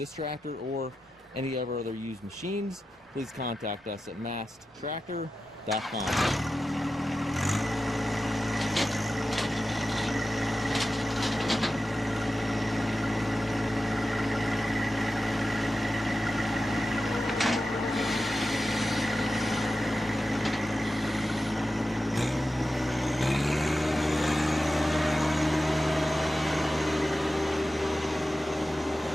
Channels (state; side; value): normal; both; correlation 0.92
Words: tractor or any of our other used machines, please contact us at maskedtractor.com.